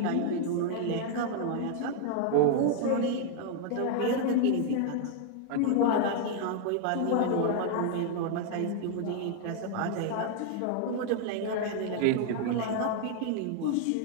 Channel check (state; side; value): different; both; correlation 0.00